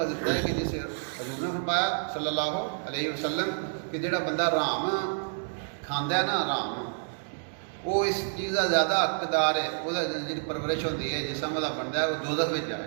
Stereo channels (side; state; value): left; silent; 59 dB below the other